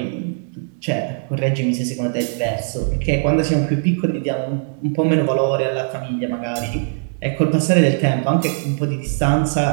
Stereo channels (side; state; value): left; silent; digital silence